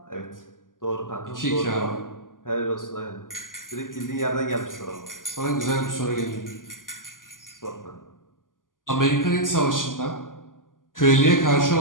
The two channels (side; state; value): right; late; 0.89 ms